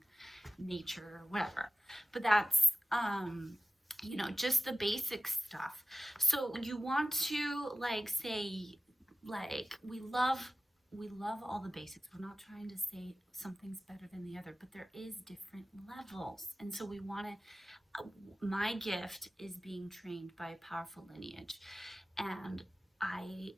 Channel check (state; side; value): normal; both; correlation 0.95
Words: nature or whatever. But that's just the basic stuff. So you want to say, we love all the basics. We're not trying to say something's better than the other, but there is different levels. And so we want to, my gift is being trained by a powerful lineage. And I